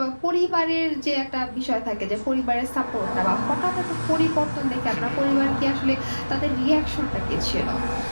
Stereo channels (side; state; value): both; inverted; correlation -1.00